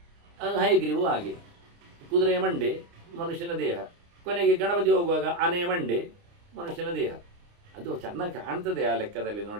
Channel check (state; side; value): late; left; 29 ms